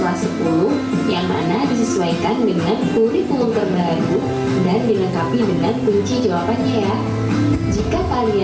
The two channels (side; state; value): both; identical; correlation 1.00